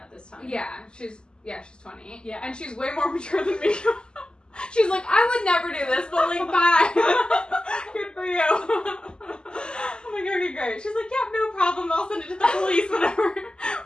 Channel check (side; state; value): right; late; 0.047 ms